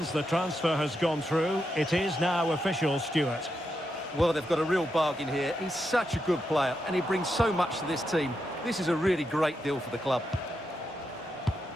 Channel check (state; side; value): normal; both; correlation 0.84